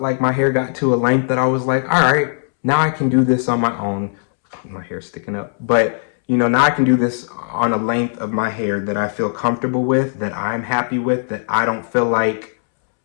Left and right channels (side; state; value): right; silent; 67 dB below the other